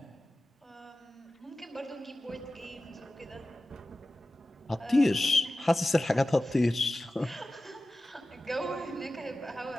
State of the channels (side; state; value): both; normal; correlation 0.95